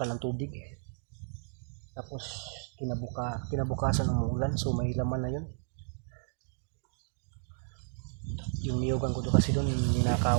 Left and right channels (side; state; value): left; silent; digital silence